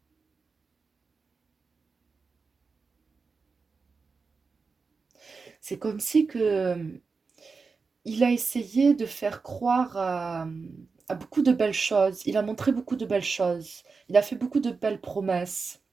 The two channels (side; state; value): left; quieter; 4.6 dB